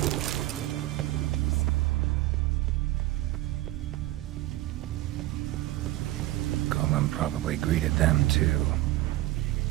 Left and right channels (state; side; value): quieter; left; 16.5 dB